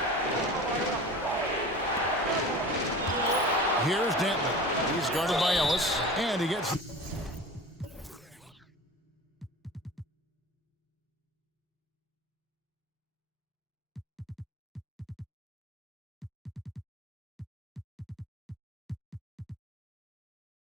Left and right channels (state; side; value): normal; both; correlation 0.36